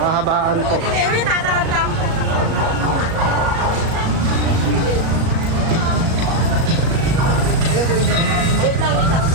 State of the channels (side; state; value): left; late; 37 ms